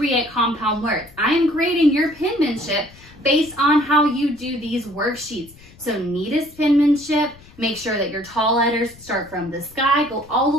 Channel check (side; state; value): left; noise; rumble, 24 dB below the sound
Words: compound words. I am grading your penmanship based on how you do these worksheets. So neatest penmanship, make sure that your tall letters start from the sky, go all the